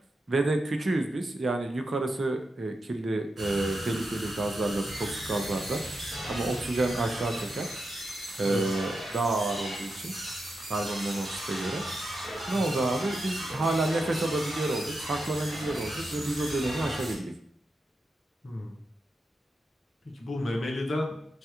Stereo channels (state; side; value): normal; both; correlation 0.88